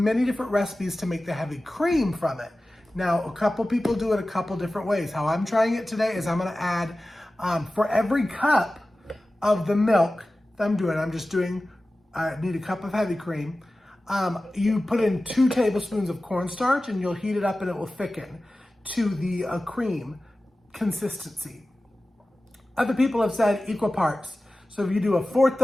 different recipes to make the heavy cream from it. Now, a couple people do it a couple different ways. How I'm trying it today is I'm gonna add, for every cup of the milk that I need a cup of heavy cream. You put in 2 tablespoons of cornstarch and you'll heat it up and it will thicken to the cream consistency. Other people have said equal parts. So if you do 1/4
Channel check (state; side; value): normal; both; correlation 0.96